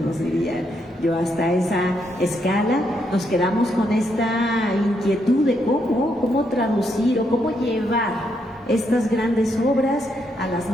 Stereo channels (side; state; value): both; normal; correlation 0.77